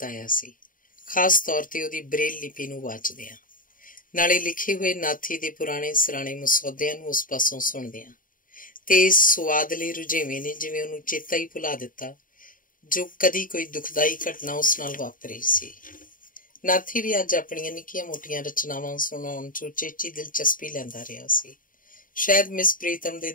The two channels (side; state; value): right; late; 0.40 ms